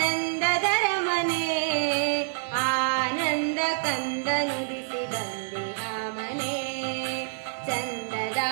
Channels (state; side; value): silent; left; digital silence